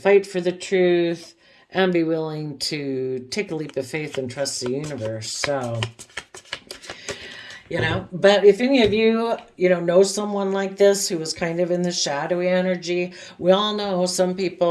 for the truth, and be willing to take a leap of faith and trust the universe. So, but if any of you, know someone like this who is kind of in the shadowy energy, we all know some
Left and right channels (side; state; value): both; identical; correlation 1.00